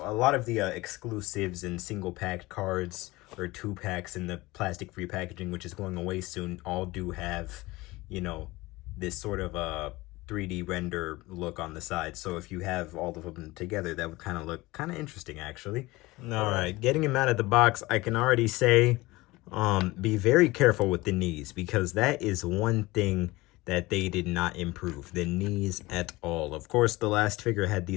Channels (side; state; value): right; quieter; 20.7 dB